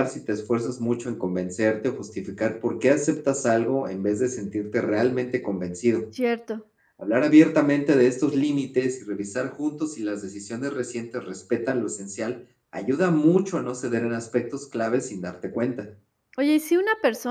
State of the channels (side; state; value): both; identical; correlation 1.00